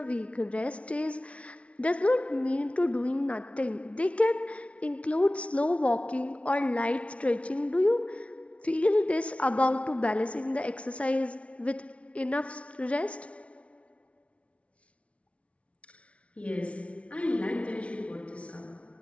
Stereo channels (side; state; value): right; late; 0.063 ms